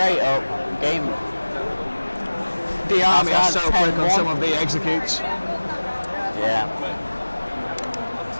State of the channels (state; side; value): inverted; both; correlation -1.00